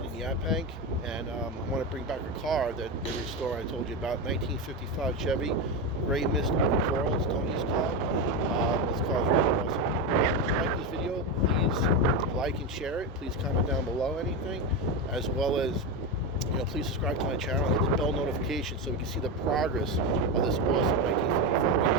in Yaphank, and I want to bring back a car that they restored. I told you about 1955 Chevy Gray Mist over Coral. It's Tony's car. This car is really awesome. If you like this video, please like and share it. Please comment down below anything, as well as please subscribe to my channel and hit the bell notification so we can see the progress of this awesome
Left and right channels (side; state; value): both; normal; correlation 0.14